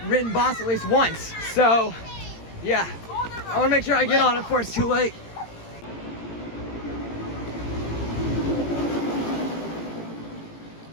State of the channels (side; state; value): right; late; 18 ms